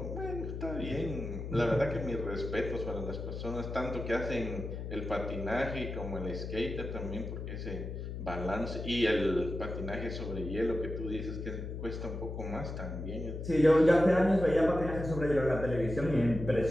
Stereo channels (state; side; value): noise; left; hum, 6 dB below the sound